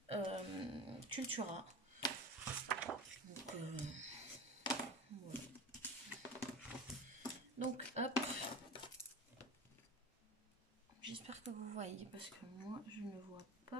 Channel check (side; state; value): both; normal; correlation 0.31